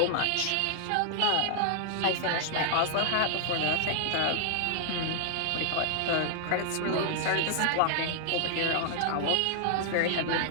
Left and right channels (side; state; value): both; different; correlation 0.00